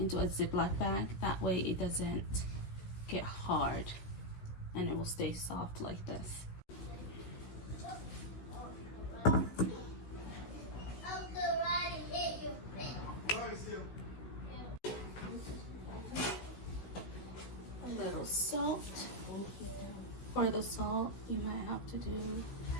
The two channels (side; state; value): right; late; 16 ms